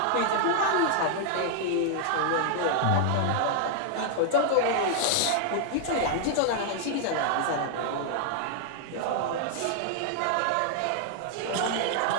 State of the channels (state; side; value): different; both; correlation -0.01